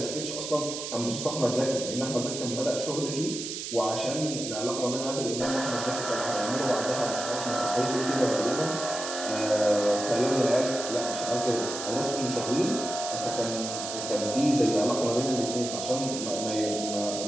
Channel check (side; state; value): right; noise; hiss, 6 dB below the sound